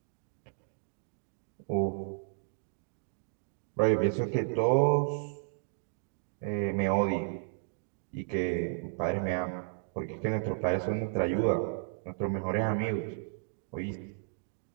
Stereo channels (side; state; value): left; silent; digital silence